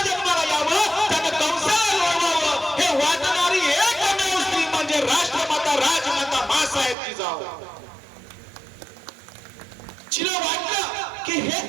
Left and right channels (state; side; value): drops out; left; at 7.0 s